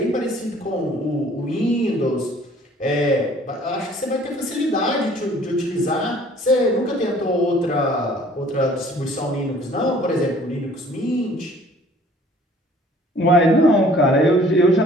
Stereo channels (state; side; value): normal; both; correlation 0.54